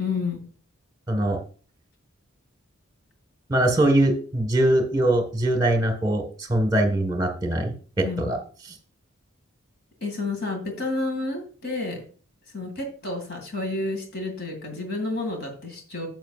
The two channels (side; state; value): both; normal; correlation 0.72